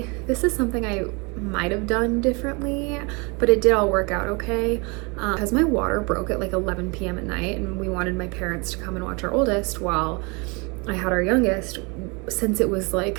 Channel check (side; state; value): left; quieter; 29.6 dB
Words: this is something I might have done differently, but it did all work out okay. Because my water broke at like 11 p.m. at night, and we wanted my parents to come and watch our oldest while I had our youngest. Since it was like